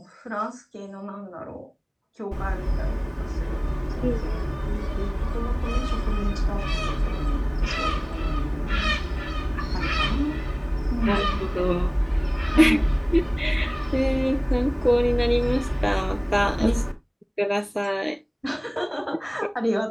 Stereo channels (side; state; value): both; identical; correlation 1.00